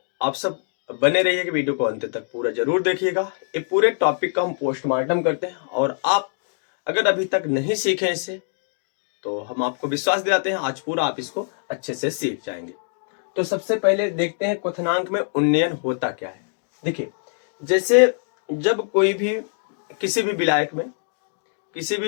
आप सब बने रहिएगा, वीडियो को अंत तक पूरा जरूर देखिएगा। ये पूरे टॉपिक का हम पोस्टमार्टम करते हैं और आप अगर अभी तक नहीं सीखे इसे तो हम आपको विश्वास दिलाते हैं आज पूरा आप इसको अच्छे से सीख जाएंगे। तो सबसे पहले देखते हैं क्वथनांक में उन्नयन होता क्या है। देखिए, जैसे जब कोई भी किसी भी विलायक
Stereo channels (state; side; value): silent; right; digital silence